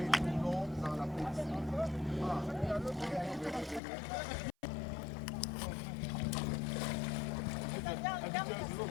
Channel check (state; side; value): drops out; right; at 3.8 s